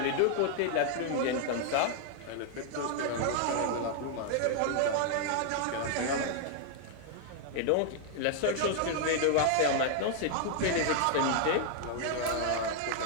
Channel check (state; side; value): different; both; correlation 0.00